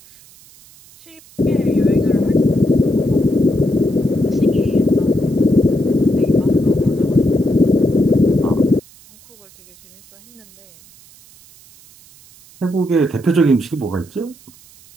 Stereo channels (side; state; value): right; noise; hiss, 26 dB below the sound